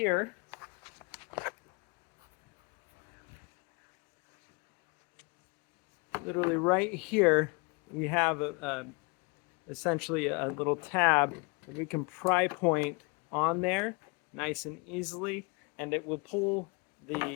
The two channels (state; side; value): quieter; right; 30.2 dB